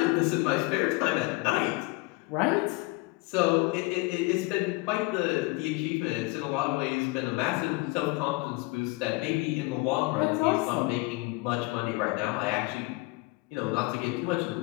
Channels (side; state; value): right; quieter; 24.3 dB